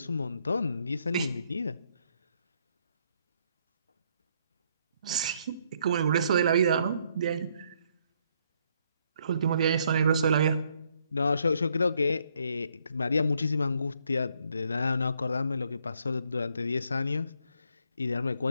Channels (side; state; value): both; inverted; correlation -0.71